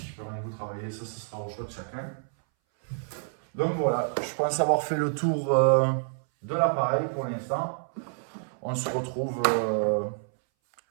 Permettez-vous de travailler, ça sera au choix de chacun. Donc voilà, je pense avoir fait le tour de l'appareil pour l'instant. On se retrouve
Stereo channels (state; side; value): silent; left; 59 dB below the other